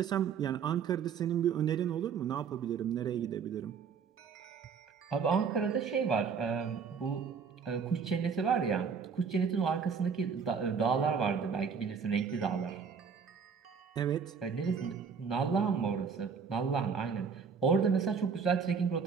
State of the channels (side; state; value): left; quieter; 6.2 dB